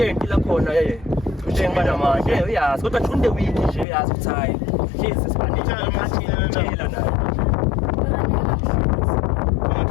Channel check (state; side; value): drops out; right; at 3.9 s